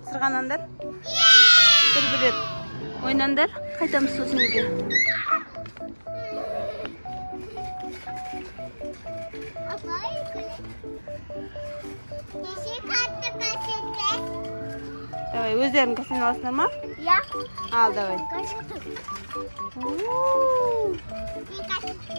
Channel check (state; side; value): inverted; both; correlation -1.00